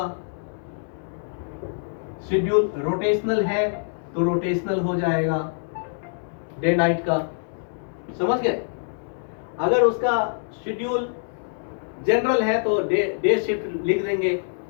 शेड्यूल रोटेशनल है तो रोटेशनल हो जाएगा, डे नाइट का। समझ गए? अगर उसका शेड्यूल जनरल है तो डे शिफ्ट लिख देंगे।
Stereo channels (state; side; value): silent; right; 62 dB below the other